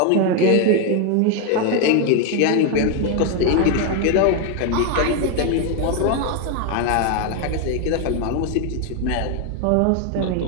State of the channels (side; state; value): both; different; correlation 0.01